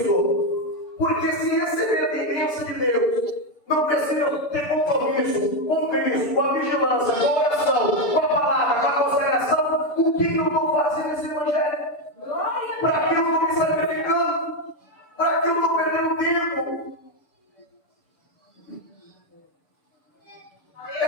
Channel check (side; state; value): right; late; 6.8 ms